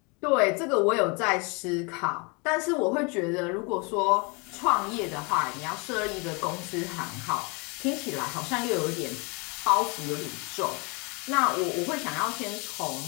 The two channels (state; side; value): quieter; right; 31.0 dB